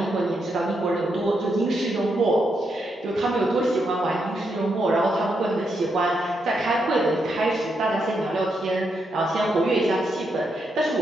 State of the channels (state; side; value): normal; both; correlation 0.81